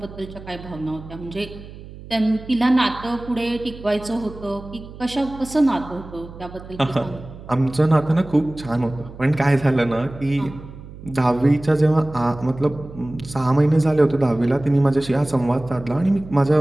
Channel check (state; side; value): noise; right; hum, 16 dB below the sound